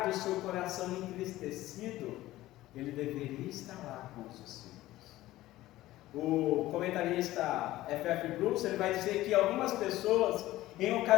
do seu coração entristecido, ele deveria estar lá com os discípulos. O comentarista F.F. Bruce, ele vai dizer que algumas pessoas, em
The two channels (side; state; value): right; quieter; 16.2 dB